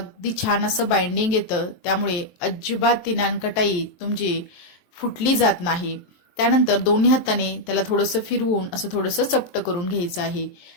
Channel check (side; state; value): right; late; 23 ms